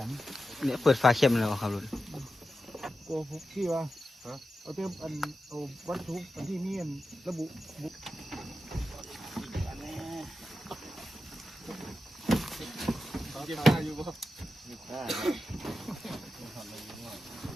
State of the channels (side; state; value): both; normal; correlation 0.91